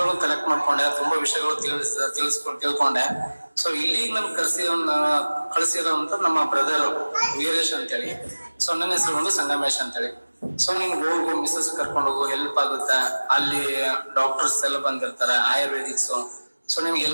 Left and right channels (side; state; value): both; inverted; correlation -1.00